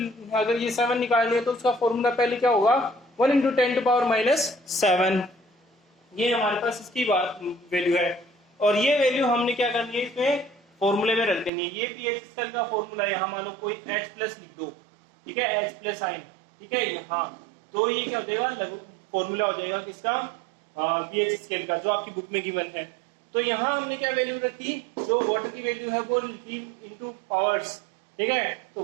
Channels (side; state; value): left; drops out; at 11.5 s